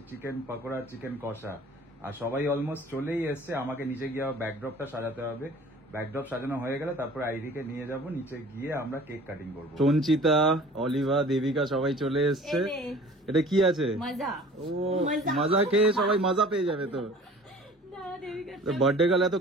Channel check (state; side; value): normal; both; correlation 0.47